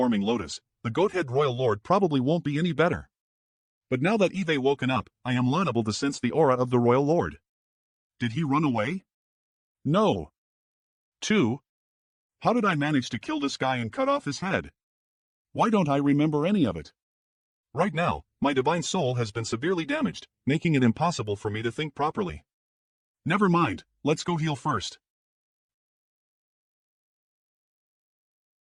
lotus, the goat-head Royal Lord probably won't be any better. But now that Eve woken up, I am liable to sense the aura of the Royal Lord. Did he run away? No. 2. How did I manage to kill this guy and cut off his head? Why don't I remember any of it? Right now, my divine soul has been severely damaged, making it impossible for me to think properly. Never mind, let's go heal first.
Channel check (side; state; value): both; identical; correlation 1.00